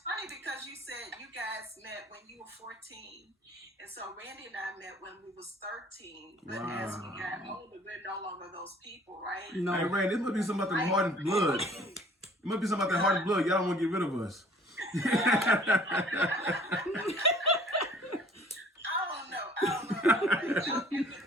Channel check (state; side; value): normal; both; correlation 0.53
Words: funny because you said you guys met when you were 14. And so Randy and I met when we was 13. But as we got older, we're no longer those people, right? No. Hey, Randy, this must be something about the Harden blood. It must be something about that Harden blood. Y'all don't want to get rid of us. I don't know. Y'all came looking